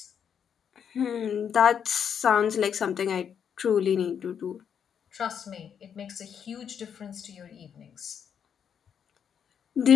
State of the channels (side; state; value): right; quieter; 7.9 dB